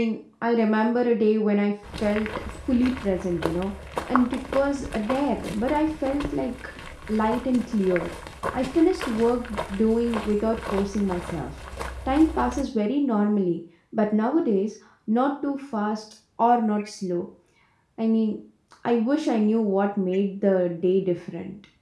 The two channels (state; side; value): identical; both; correlation 1.00